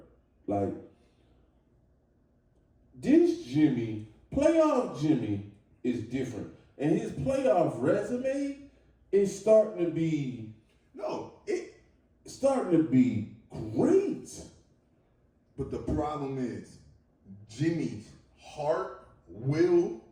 Like, this Jimmy, playoff Jimmy, is different. And his playoff resume is starting to be great. But the problem is, Jimmy's heart, will,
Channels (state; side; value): identical; both; correlation 1.00